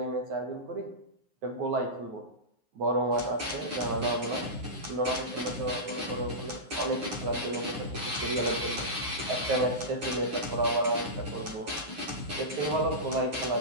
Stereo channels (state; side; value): late; left; 9.5 ms